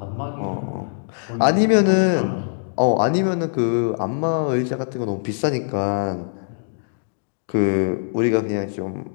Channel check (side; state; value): right; silent; digital silence